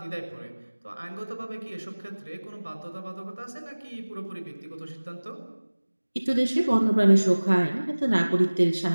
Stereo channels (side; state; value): both; inverted; correlation -1.00